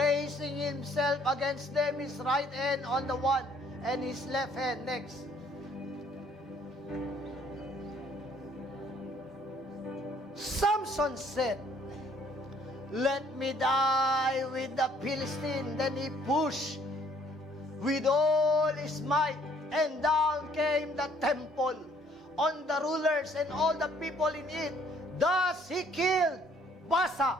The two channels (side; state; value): both; normal; correlation 0.62